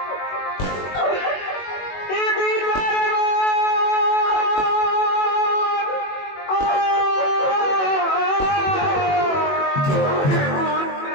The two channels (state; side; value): late; right; 21 ms